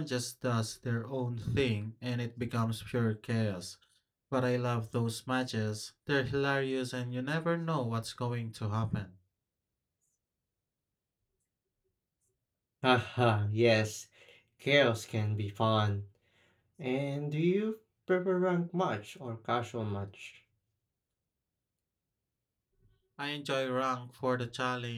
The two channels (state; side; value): identical; both; correlation 1.00